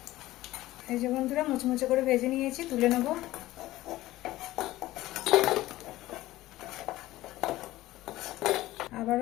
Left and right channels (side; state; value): right; quieter; 16.6 dB